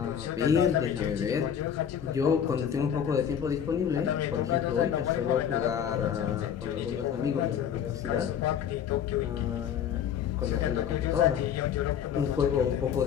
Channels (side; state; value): right; quieter; 8.7 dB